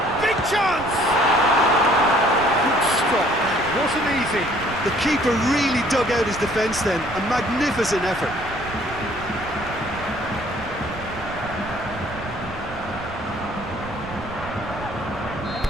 Big chance! Good stop. That wasn't easy. The keeper really dug out his defence then. A magnificent effort.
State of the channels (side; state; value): right; noise; rumble, 14 dB below the sound